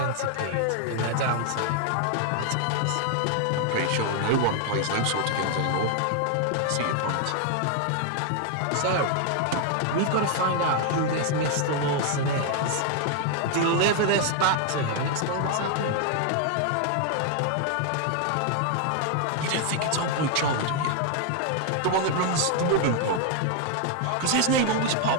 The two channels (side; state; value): both; different; correlation 0.00